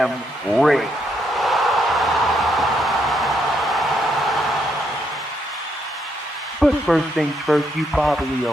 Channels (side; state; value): both; normal; correlation 0.76